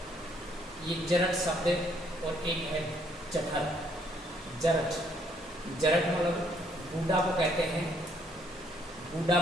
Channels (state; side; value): normal; both; correlation 0.67